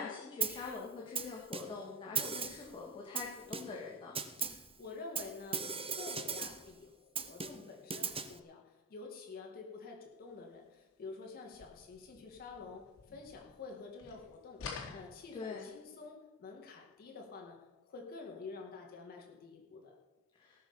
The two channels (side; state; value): both; normal; correlation 0.11